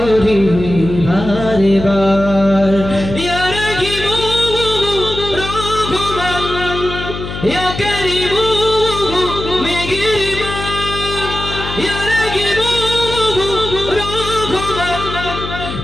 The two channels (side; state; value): left; noise; hum, 8 dB below the sound